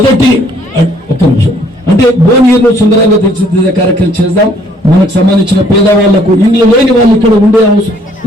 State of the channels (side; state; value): both; normal; correlation 0.62